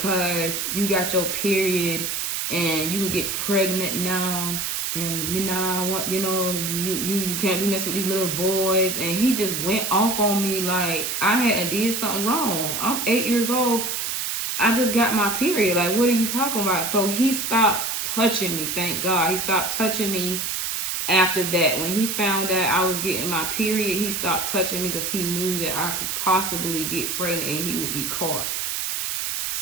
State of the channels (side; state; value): right; noise; hiss, 2 dB below the sound